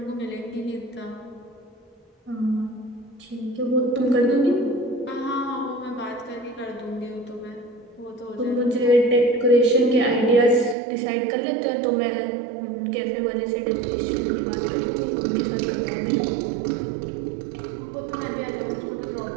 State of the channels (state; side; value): drops out; left; at 10.8 s